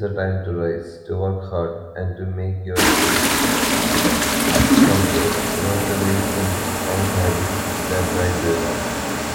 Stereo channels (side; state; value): both; identical; correlation 1.00